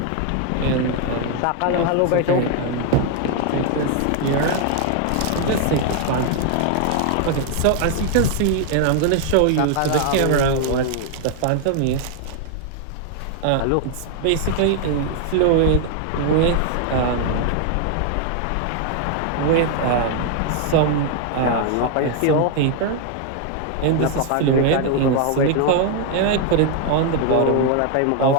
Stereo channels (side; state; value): both; different; correlation 0.00